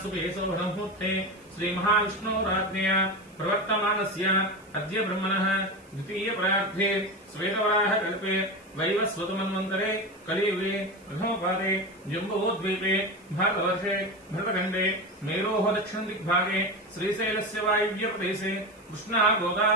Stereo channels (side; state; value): right; noise; hiss, 29 dB below the sound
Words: सौभमुहूर्ते श्रीमहाविष्णोराज्ञया प्रवर्तमानस्य अद्य ब्रह्मणः द्वितीयपरार्धे श्वेतवराहकल्पे वैवस्वतमन्वन्तरे कलियुगे प्रथमपादे जम्बूद्वीपे भारतवर्षे भरतखण्डे मेरोः दक्षिणदिग्भागे श्रीशैलस्य वायव्यप्रदेशे कृष्णा